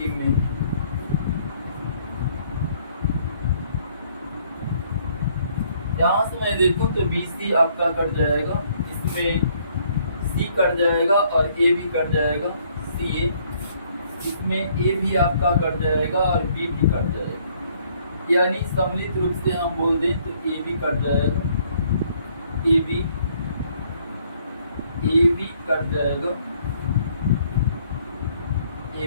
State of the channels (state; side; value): inverted; both; correlation -0.65